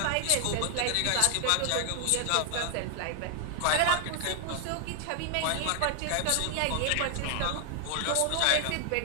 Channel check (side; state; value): both; different; correlation 0.00